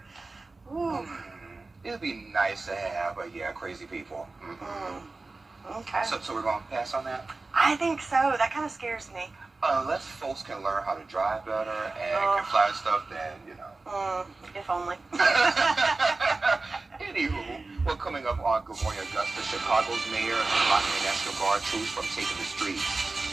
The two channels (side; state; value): left; quieter; 3.5 dB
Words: Ooh. It'd be nice to have, but yeah, crazy people. Okay. So we're going to pass on that? I think so. That kind of scares me. Unless folks can learn how to drive better and can fly stuff, then, you know. If only. Anywho, well, coming up on Good Morning Augusta, Chicago's mayor is blocking National Guard troops from taking the streets.